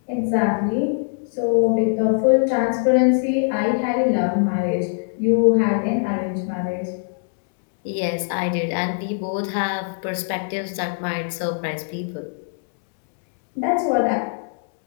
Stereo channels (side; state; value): right; silent; digital silence